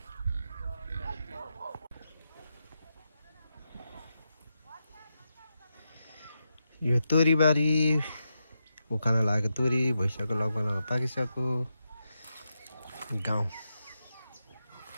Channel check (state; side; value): inverted; both; correlation -0.86